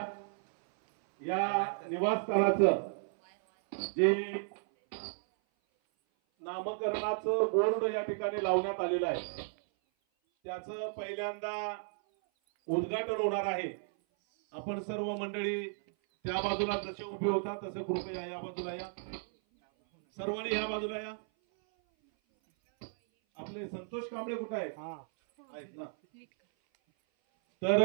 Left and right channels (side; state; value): left; silent; 55 dB below the other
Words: या निवासस्थानाचं जे नामकरणाचं बोर्ड या ठिकाणी लावण्यात आलेलं आहे त्याचं पहिल्यांदा उद्घाटन होणार आहे. आपण सर्व मंडळी त्या बाजूला जसे उभे होता तसे कृपया या बाजूला या. सर्वांनी या बाजूला या. आपले संतोष कांबळे कुठे आहेत ना? तर